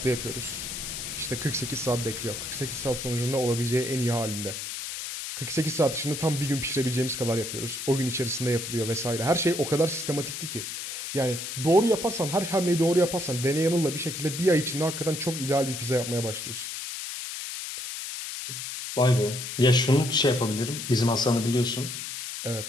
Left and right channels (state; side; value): noise; left; hiss, 6 dB below the sound